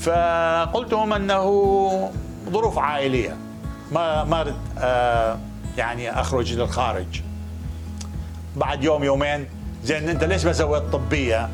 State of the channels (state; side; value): identical; both; correlation 1.00